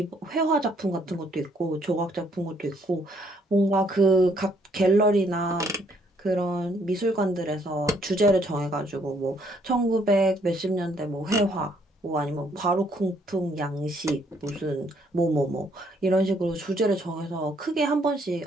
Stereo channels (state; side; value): normal; both; correlation 0.67